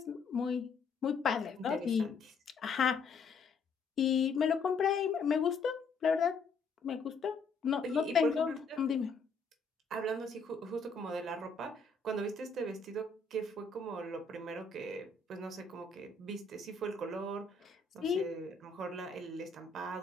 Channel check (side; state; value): right; quieter; 4.4 dB